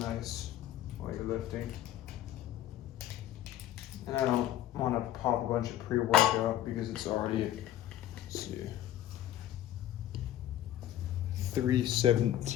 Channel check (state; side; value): quieter; right; 12.6 dB